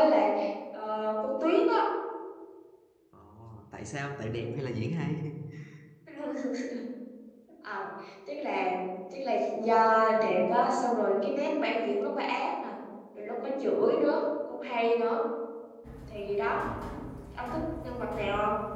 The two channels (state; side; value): identical; both; correlation 1.00